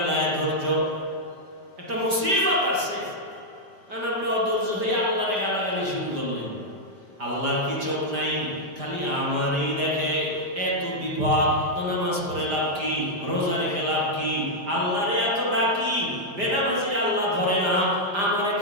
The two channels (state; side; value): late; left; 5.0 ms